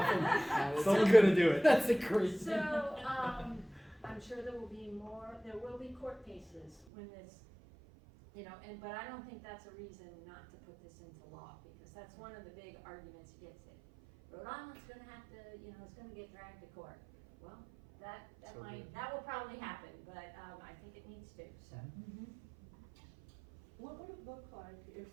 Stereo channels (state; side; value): drops out; left; at 6.8 s